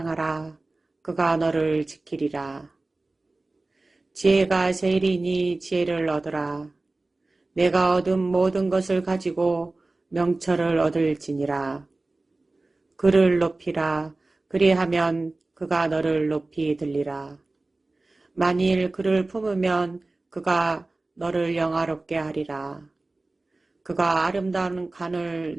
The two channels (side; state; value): left; quieter; 3.1 dB